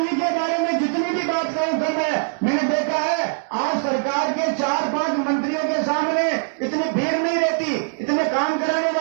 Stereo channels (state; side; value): silent; left; digital silence